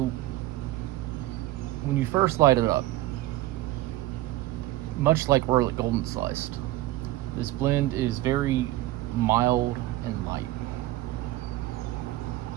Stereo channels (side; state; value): left; quieter; 16.1 dB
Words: when you first light it up, much like Orlik Golden Sliced, this blend is very mild and light.